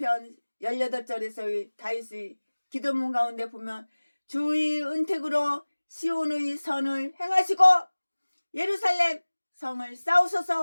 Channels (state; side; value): inverted; both; correlation -1.00